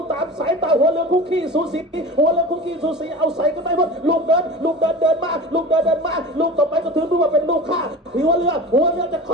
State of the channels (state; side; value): normal; both; correlation 0.33